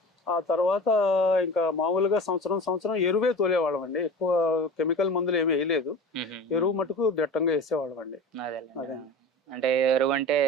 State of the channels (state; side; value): normal; both; correlation 0.34